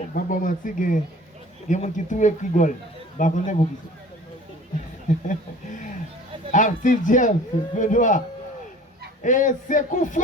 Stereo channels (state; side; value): normal; both; correlation 0.45